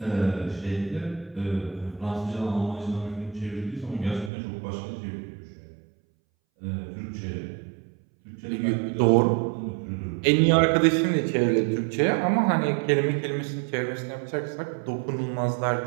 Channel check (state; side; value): drops out; left; at 4.3 s